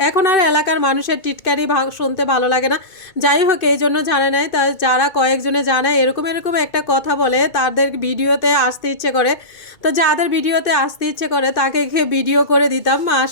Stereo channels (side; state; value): right; late; 2.6 ms